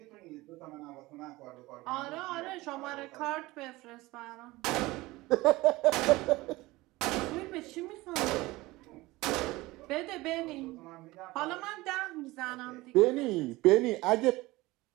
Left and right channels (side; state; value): left; quieter; 20.1 dB